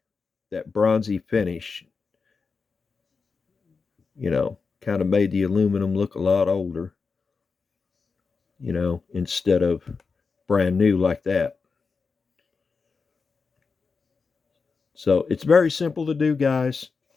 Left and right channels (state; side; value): quieter; right; 4.8 dB